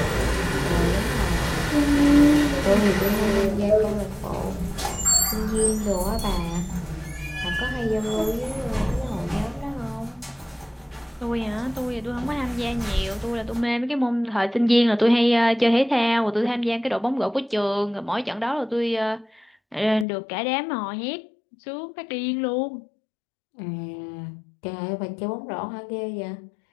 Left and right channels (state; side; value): drops out; right; at 20.1 s